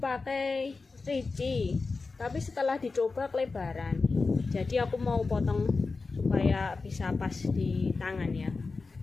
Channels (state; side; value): quieter; right; 4.1 dB